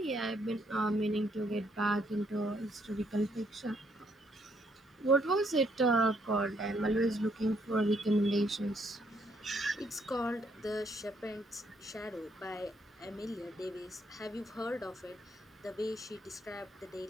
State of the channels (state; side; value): normal; both; correlation 0.71